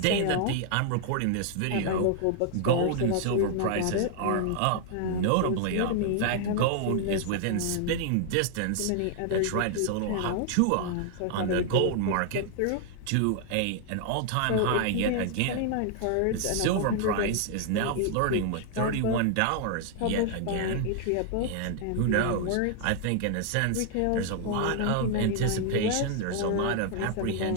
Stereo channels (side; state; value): both; different; correlation 0.00